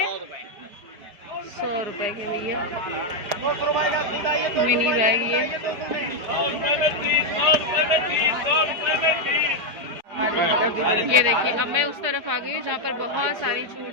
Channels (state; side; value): late; left; 4.9 ms